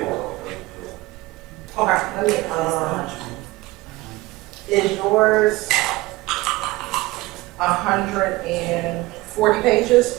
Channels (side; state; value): left; quieter; 20.3 dB